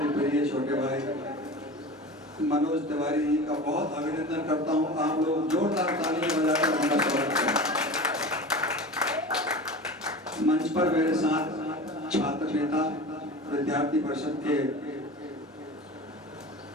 ही प्रिय छोटे भाई मनोज तिवारी जी का बहुत अभिनंदन करता हूं। आप लोग जोरदार तालियां बजाकर उनका स्वागत करें। मंच पर मेरे साथ छात्र नेता विद्यार्थी परिषद के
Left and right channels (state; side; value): normal; both; correlation 0.33